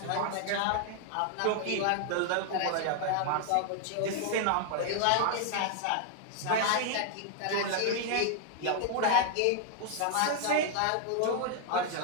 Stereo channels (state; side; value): different; both; correlation 0.00